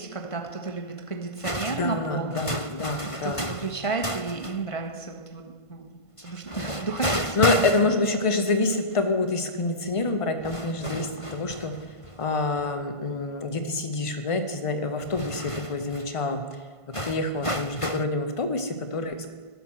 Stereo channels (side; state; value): right; late; 1.5 ms